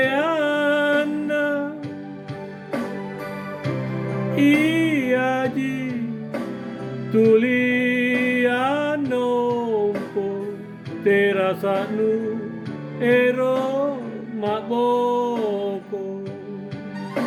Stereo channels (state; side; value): identical; both; correlation 1.00